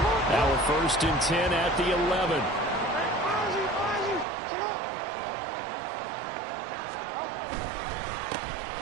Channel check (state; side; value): drops out; left; at 4.2 s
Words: Now a 1st and 10 at the 11.